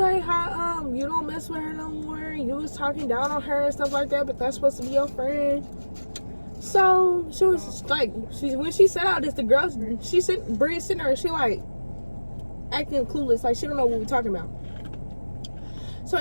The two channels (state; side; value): inverted; both; correlation -1.00